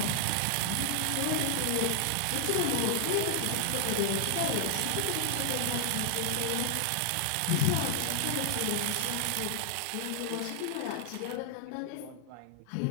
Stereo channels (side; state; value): both; different; correlation -0.01